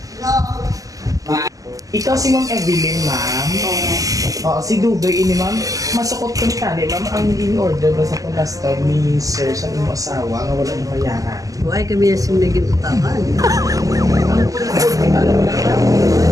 Ikaw si Ma'am Evelyn, ma'am. Oo, si Dugay ini, ma'am. Masukot ko ni Kani, ma'am, ang in-order ba sa last time ni Sir sa iyong asawa nga wala yung bayaran. Why kami yung naging utakan?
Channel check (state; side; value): late; left; 0.17 ms